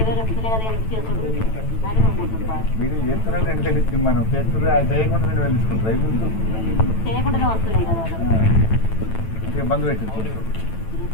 వస్తున్నాయి కదా ఎందుకు చేసుకుంటారు మీరు చేస్తారని 2000 ఇచ్చింది మనం చేస్తారు అది చేయకుండా 2000 తీసుకుంటారు చేయకుండానే వస్తున్నాయి కదా అంటే బంద్ పెట్టింది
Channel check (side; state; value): right; late; 9.1 ms